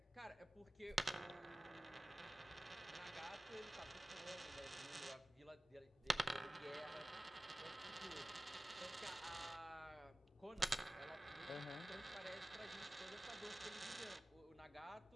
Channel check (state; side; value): normal; both; correlation 0.97